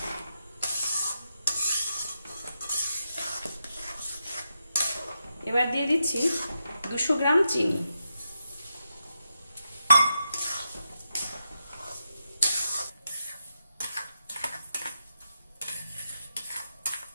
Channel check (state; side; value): inverted; both; correlation -0.85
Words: এবার দিয়ে দিচ্ছি 200 গ্রাম চিনি।